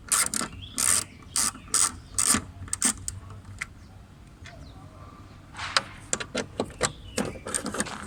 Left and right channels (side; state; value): both; identical; correlation 1.00